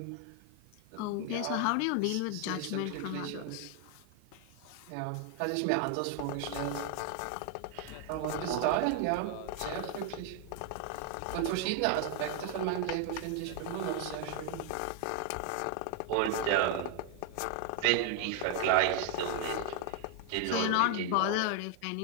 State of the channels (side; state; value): both; different; correlation 0.00